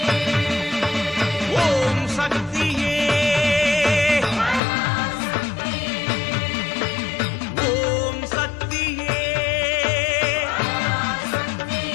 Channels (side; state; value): right; drops out; at 4.6 s